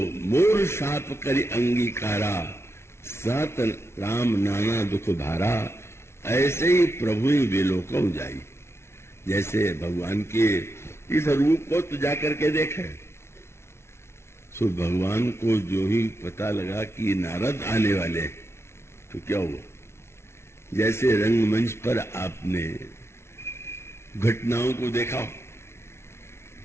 मोर शाप करि अंगीकारा, सत राम नाना दुख भारा। ऐसे ही प्रभु ही विलोकम जाई। जैसे भगवान के इस रूप को तो जाकर के देखे, सो भगवान को जो ही पता लगा कि नारद आने वाले, तो क्या हुआ, जैसे रंगमंच पर आपने घटनाओं को देखा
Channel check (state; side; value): late; right; 0.12 ms